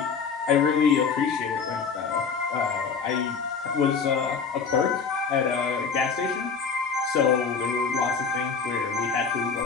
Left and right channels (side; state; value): right; quieter; 5.7 dB